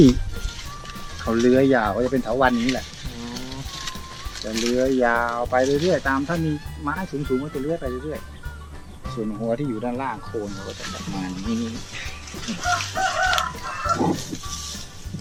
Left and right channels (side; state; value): both; identical; correlation 1.00